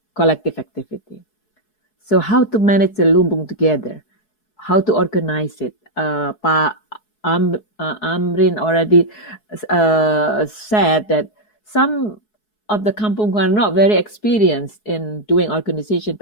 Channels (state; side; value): late; right; 4.7 ms